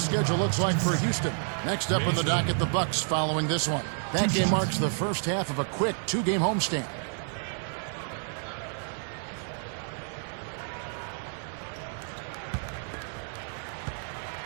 looks like for Houston. Next up in the docket, the Bucks following this one. That game marks the first half of a quick 2-game homestand.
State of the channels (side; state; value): left; silent; 58 dB below the other